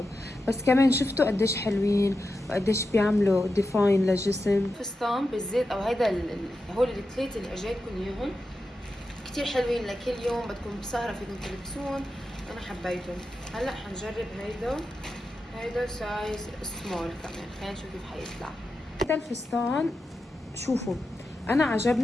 بس كمان شفتوا قديش حلوين وقديش بيعملوا ديفاين للجسم. فستان بالزيت او هيدا هول الثلاثة اللي اجيتكم اياهم كتير حلوين لكل يوم بدكم بسهرة فيكم تلبسون، انا حبيتهم. هلا حنجرب هيدا سايز سمول كمان، خلينا نشوف كيف حيطلع. هيدا الفستان شوفوا انا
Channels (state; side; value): normal; both; correlation 0.90